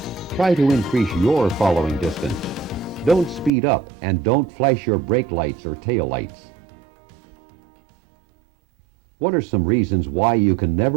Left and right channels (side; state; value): left; drops out; at 3.5 s